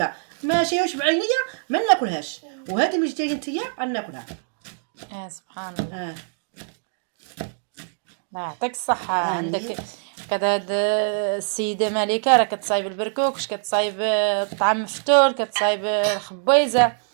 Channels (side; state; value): left; silent; 58 dB below the other